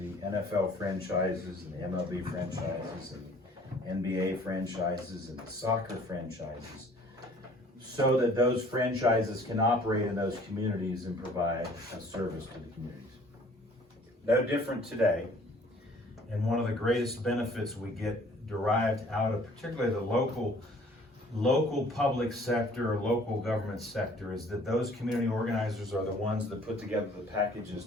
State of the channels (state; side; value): normal; both; correlation 0.54